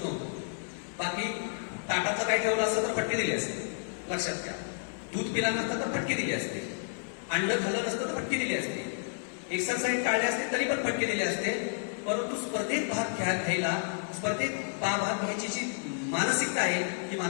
नव्हतो. बाकी ताटाचं काय ठेवलं असतं तर फटके दिली असते, लक्षात घ्या. दूध पिला नसतं तर फटके दिली असते, अंड खाल्लं नसतं तर फटके दिली असते, एक्सरसाइज टाळले असते तरी पण फटके दिले असते. परंतु स्पर्धेत भाग घ्यायला, स्पर्धेत भाग घ्यायची जी मानसिकता आहे, ही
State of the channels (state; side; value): silent; right; digital silence